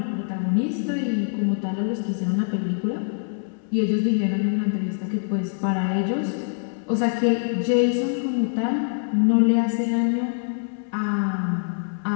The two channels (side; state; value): right; silent; 62 dB below the other